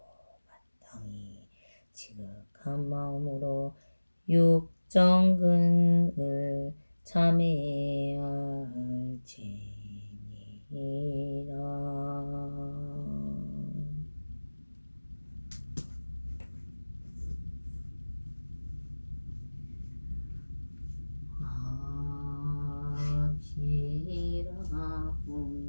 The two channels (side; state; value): both; inverted; correlation -1.00